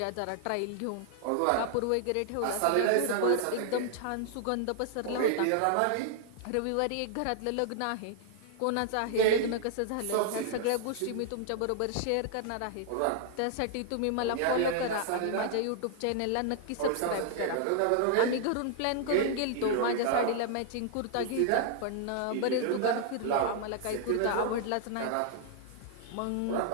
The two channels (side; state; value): both; different; correlation 0.00